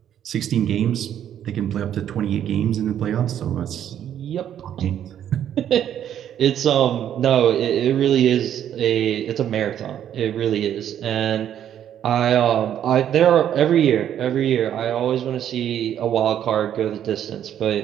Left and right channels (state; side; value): quieter; left; 10.2 dB